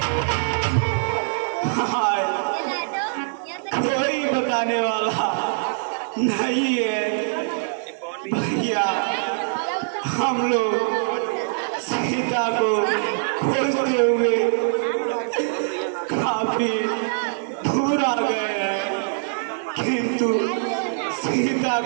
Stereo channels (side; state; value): left; silent; digital silence